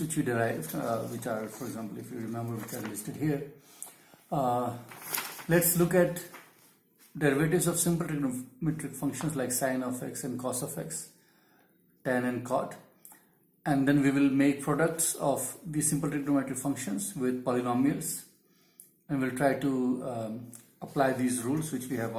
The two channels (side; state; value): both; identical; correlation 1.00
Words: we derived, which are, for example, if you remember, which are listed here, let's look at derivatives of simple trigonometric functions like sine of x and cos of x, tan and cot, and then we will make products of these simple trigonometric functions with polynomials, and we'll try to apply these rules which we have